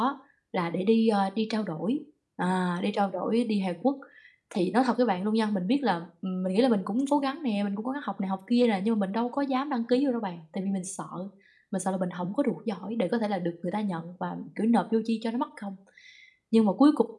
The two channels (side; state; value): both; identical; correlation 1.00